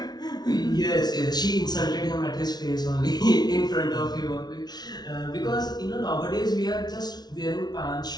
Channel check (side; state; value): right; late; 0.19 ms